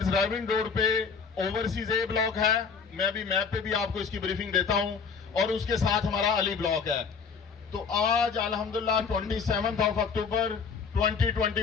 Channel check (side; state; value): right; quieter; 5.8 dB